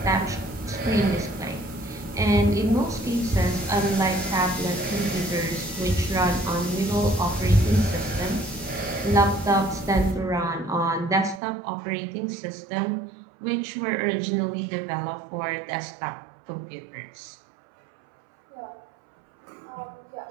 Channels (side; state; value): left; drops out; at 11.4 s